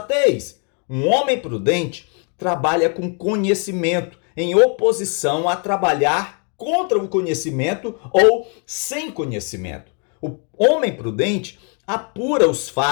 Um homem prudente trabalha com conhecimento, em oposição a trabalhar contra o conhecimento ou sem conhecimento. O homem prudente apura os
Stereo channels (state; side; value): quieter; right; 38.9 dB